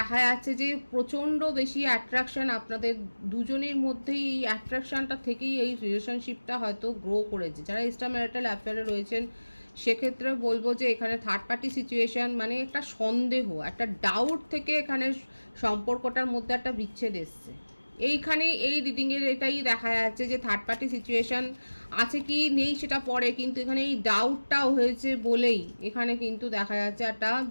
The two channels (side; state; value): both; inverted; correlation -1.00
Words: যাচ্ছে যে প্রচণ্ড বেশি অ্যাট্রাকশন আপনাদের দুজনের মধ্যেই। এই অ্যাট্রাকশনটা থেকেই এই রিলেশনশিপটা হয়তো গ্রো করেছে। যারা এক্সট্রা ম্যারিটাল অ্যাফেয়ারে রয়েছেন সেক্ষেত্রে বলবো যে এখানে থার্ড পার্টি সিচুয়েশান, মানে একটা সন্দেহ, একটা ডাউট থেকে এখানে সম্পর্কটার মধ্যে একটা বিচ্ছেদ এসছে। এইখানে এই রিডিংয়ের এটাই দেখা যাচ্ছে যে থার্ড পার্টি সিচুয়েশান আছে কি নেই সেটা পরে, কিন্তু এখানে এই ডাউটটাও হয়েছে বলেই এখানে কিন্তু দেখা যাচ্ছে একটা